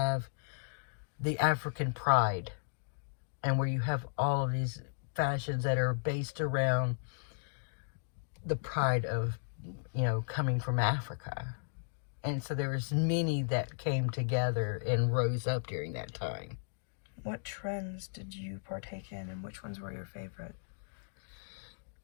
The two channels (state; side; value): silent; right; digital silence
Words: the African pride, and where you have all of these fashions that are based around the pride of, coming from Africa. And so there was many that came together and rose up during that time. What trends did you partake in, and which ones were your favorite?